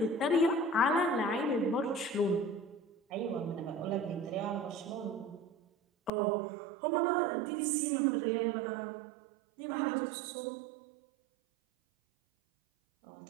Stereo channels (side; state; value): left; drops out; at 6.1 s